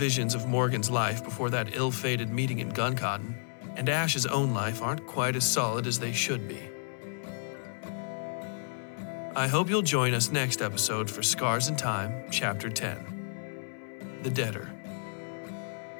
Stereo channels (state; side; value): silent; right; 57 dB below the other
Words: of Morgan's life before that ill-fated meeting in Gun Cotton and Ash's own life aren't quite as solid as they should be. I hope you'll join us next episode for Scars in Time, Chapter 10, The Debtor.